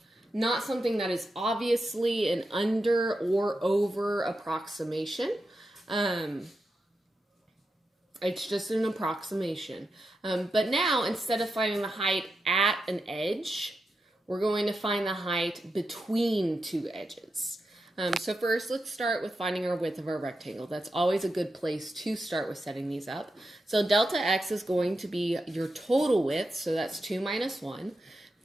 not something that is obviously an under or over approximation. It's just an approximation. But now, instead of finding the height at an edge, we're going to find the height between 2 edges. So first, let's start with finding our width of our rectangle. That's always a good place to start with setting these up. So delta x is going to be your total width, so that's 2 minus 1,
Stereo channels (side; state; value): both; normal; correlation 0.88